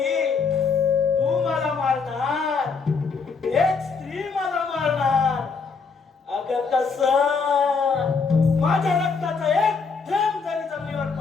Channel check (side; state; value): right; quieter; 5.0 dB